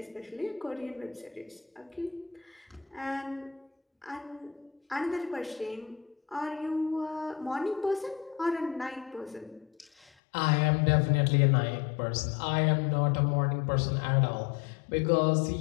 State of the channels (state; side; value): drops out; right; at 10.1 s